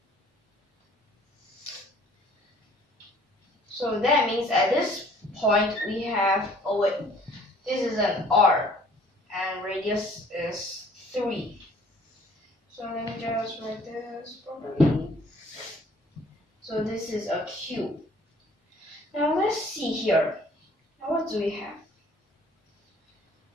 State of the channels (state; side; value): normal; both; correlation 0.55